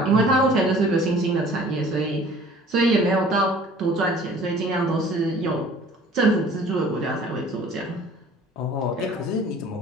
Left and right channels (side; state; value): both; normal; correlation 0.50